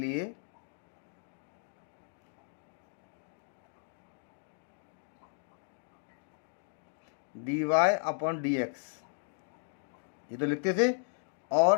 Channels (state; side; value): silent; right; digital silence